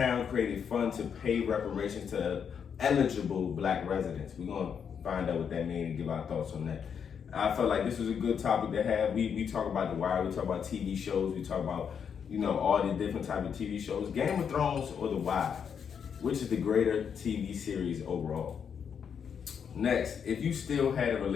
created fund to pay reparations to eligible black residents. We're going to find out what that means and give our thoughts on that. I felt like this was a good topic to have. We talk about The Wire, we talk about TV shows, we talk about, all the different type of TV shows. Game of Thrones or The Wire, which is the greater TV series overall? Next, if you still had a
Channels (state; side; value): quieter; right; 7.3 dB